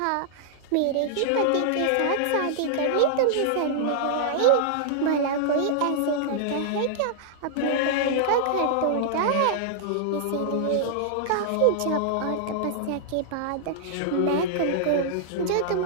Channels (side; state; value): both; different; correlation -0.01